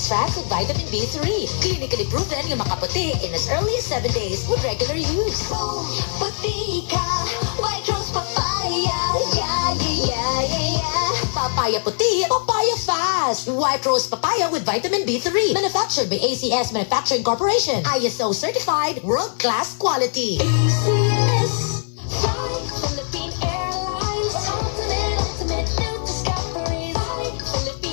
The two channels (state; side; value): silent; right; digital silence